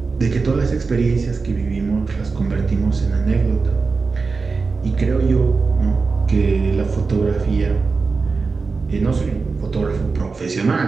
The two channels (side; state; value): left; quieter; 4.4 dB